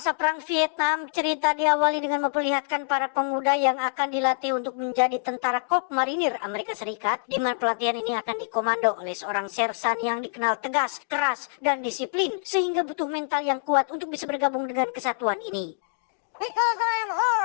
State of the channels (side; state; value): right; silent; digital silence